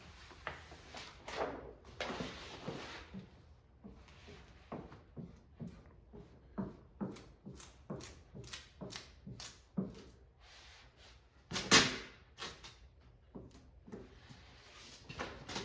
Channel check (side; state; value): both; identical; correlation 1.00